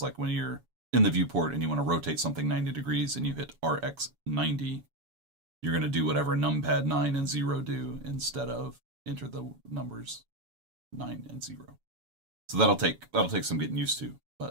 like when you're in the viewport and you want to rotate something 90 degrees and you hit RX 90, you're going to do whatever numpad 9 and 0 do instead of enter the numbers 9 and 0. So that'll take some getting used to,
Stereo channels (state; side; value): late; left; 7.1 ms